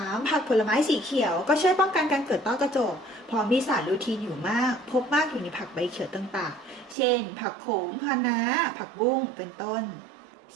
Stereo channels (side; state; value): left; drops out; at 7.0 s